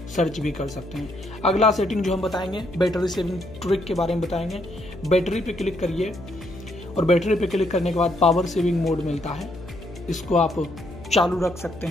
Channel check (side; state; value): left; noise; hum, 16 dB below the sound